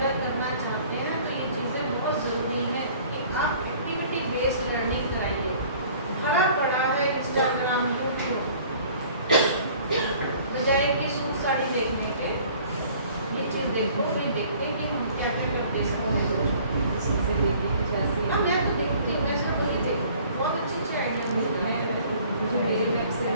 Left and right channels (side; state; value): both; inverted; correlation -0.53